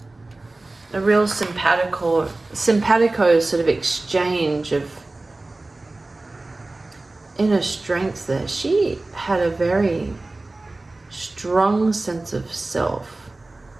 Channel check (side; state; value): left; quieter; 3.0 dB